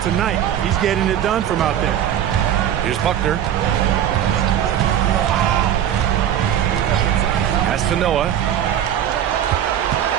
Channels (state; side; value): quieter; left; 10.4 dB